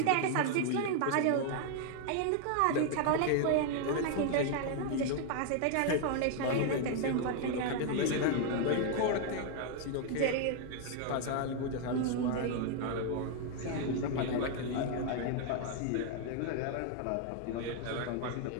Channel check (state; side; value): different; both; correlation 0.00